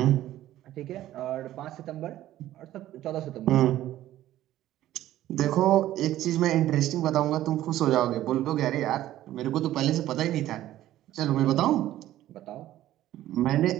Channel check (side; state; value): left; quieter; 13.8 dB